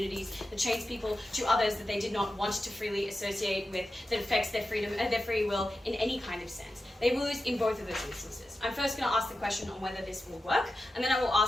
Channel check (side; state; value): both; normal; correlation 0.91